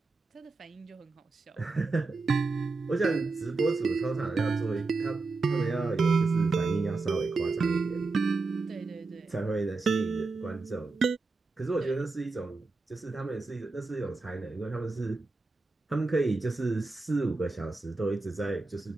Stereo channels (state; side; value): quieter; left; 3.7 dB